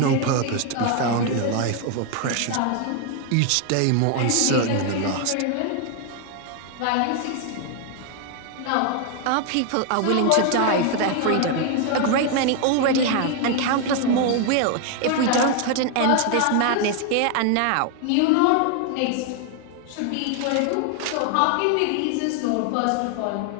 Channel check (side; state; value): both; different; correlation 0.00